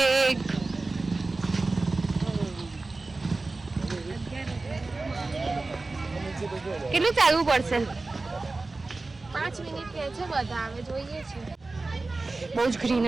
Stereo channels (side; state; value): left; quieter; 3.4 dB